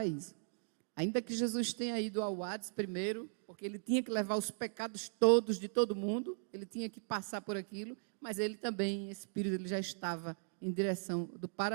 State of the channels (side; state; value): left; silent; digital silence